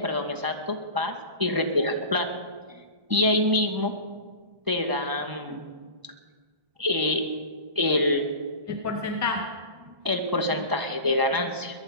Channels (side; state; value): left; late; 1.0 ms